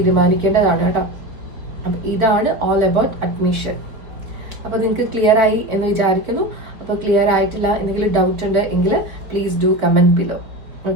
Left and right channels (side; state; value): left; late; 4.4 ms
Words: കേട്ടോ. അപ്പൊ ഇതാണ് ഓൾ അബൌട്ട് അഡ്മിഷൻ. അപ്പൊ നിങ്ങൾക്ക് ക്ലിയർ ആയി എന്ന് വിചാരിക്കുന്നു. അപ്പൊ ക്ലിയർ ആയിട്ടില്ല, എന്തെങ്കിലും ഡൗട്ട് ഉണ്ട് എങ്കിൽ please do comment below.